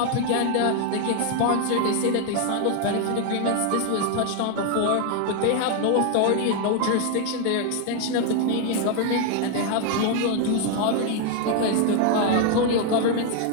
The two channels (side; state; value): both; different; correlation 0.01